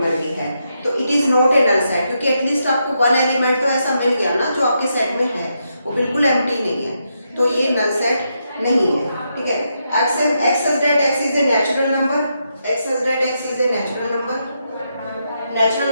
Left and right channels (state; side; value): inverted; both; correlation -0.82